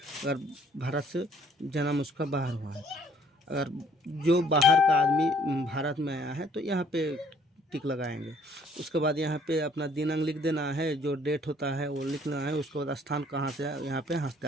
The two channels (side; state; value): both; normal; correlation 0.60